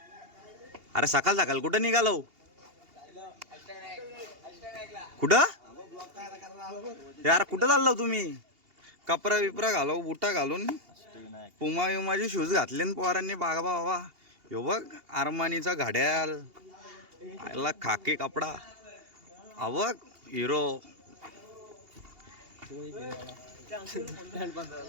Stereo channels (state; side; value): late; left; 2.8 ms